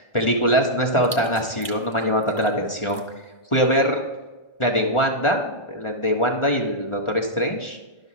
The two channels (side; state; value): right; late; 1.4 ms